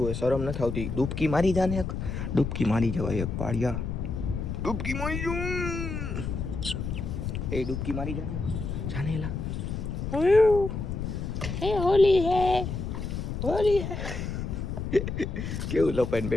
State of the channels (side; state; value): left; noise; rumble, 4 dB below the sound